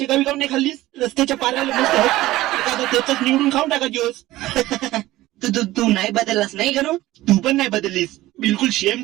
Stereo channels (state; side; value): quieter; left; 16.8 dB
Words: गावी काऊन नाही खाल्लीस? रस्त्याच्या पाराला मस्त एखादं त्याच निवडून खाऊन टाका दिवस. तू तू तू नाही बदललास नाही गणू? तू पण नाही बदललीस. बिलकुल शेम